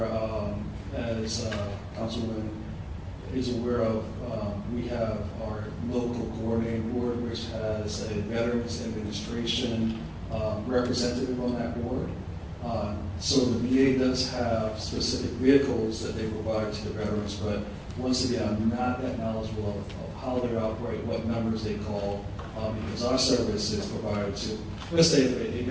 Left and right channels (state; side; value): identical; both; correlation 1.00